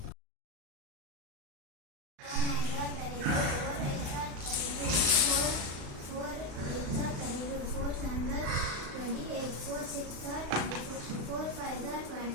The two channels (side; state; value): left; late; 35 ms